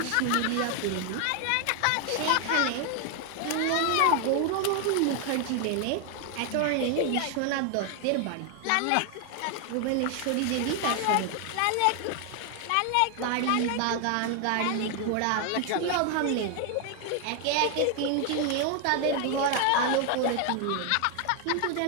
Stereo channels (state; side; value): different; both; correlation 0.00